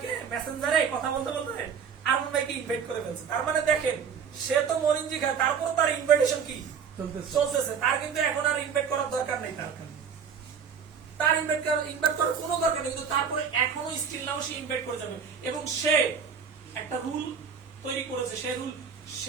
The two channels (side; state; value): left; quieter; 6.8 dB